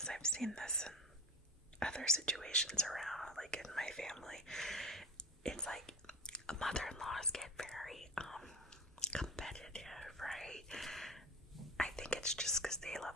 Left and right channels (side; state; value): both; normal; correlation 0.31